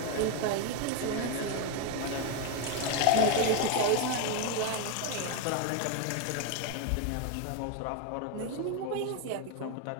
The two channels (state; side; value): different; both; correlation 0.02